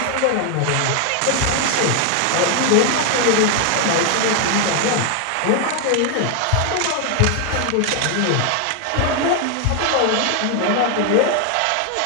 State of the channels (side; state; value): both; different; correlation 0.01